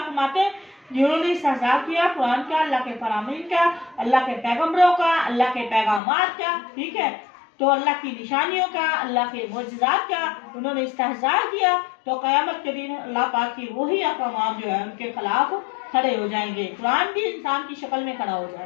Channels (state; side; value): drops out; right; at 6.0 s